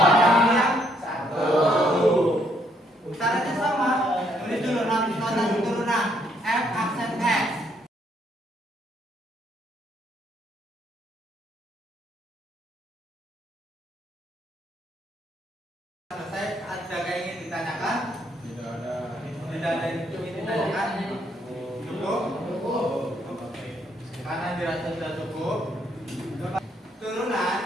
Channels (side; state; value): both; normal; correlation 0.71